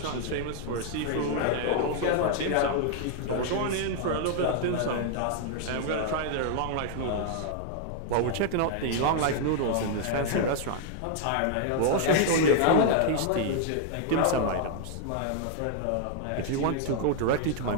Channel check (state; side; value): different; both; correlation -0.01